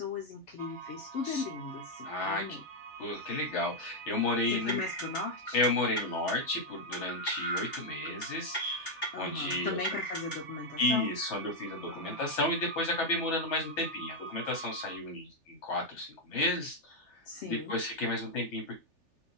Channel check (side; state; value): right; late; 3.4 ms